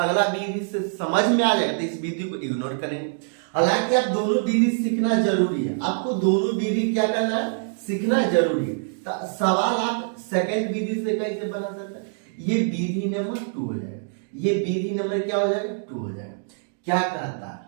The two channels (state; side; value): silent; left; digital silence